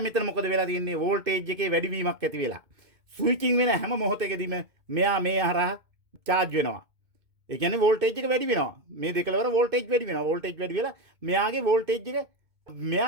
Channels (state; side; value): late; left; 2.2 ms